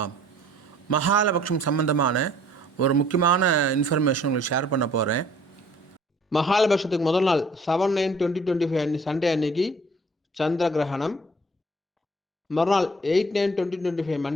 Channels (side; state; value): both; normal; correlation 0.55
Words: மகாலபக்ஷம் சம்பந்தமான ஒரு முக்கியமான இன்ஃபர்மேஷன் உங்களுக்கு ஷேர் பண்ண போகிறேன். மகாலபக்ஷத்துக்கு முதல் நாள் 7/9/2025 சண்டே அன்னைக்கு சந்திர கிரகணம். மறுநாள் 8/9/2025